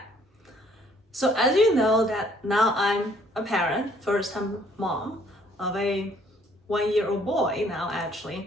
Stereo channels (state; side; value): normal; both; correlation 0.62